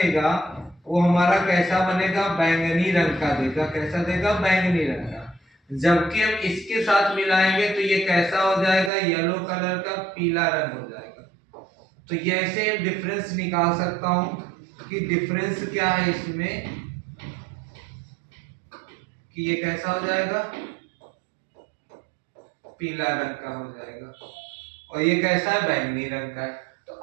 वो हमारा कैसा बनेगा, बैंगनी रंग का देगा। कैसा देगा, बैंगनी रंग का। जबकि हम इसके साथ मिलाएंगे तो ये कैसा हो जाएगा, येलो कलर का, पीला रंग हो जाएगा। तो ये ऐसे डिफरेंस निकाल सकता हूं कि डिफरेंस क्या है इसमें, कि ये कैसा हो जाएगा, पीला रंग का हो जाएगा, और ये कैसा है, बैंगनी रंग का है। तो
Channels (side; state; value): left; drops out; at 8.9 s